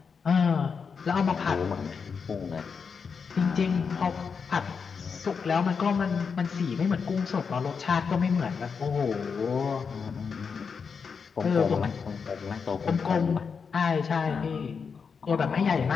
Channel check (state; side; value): quieter; right; 5.8 dB